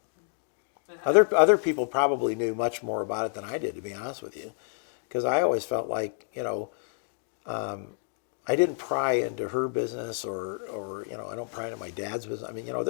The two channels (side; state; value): right; silent; digital silence